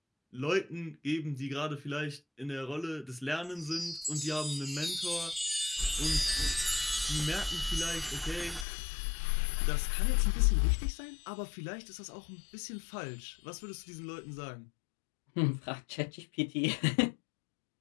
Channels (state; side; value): drops out; right; at 8.7 s